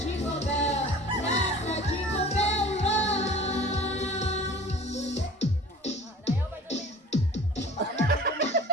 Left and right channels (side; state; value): both; normal; correlation 0.43